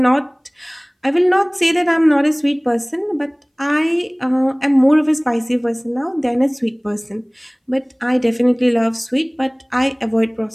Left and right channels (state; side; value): identical; both; correlation 1.00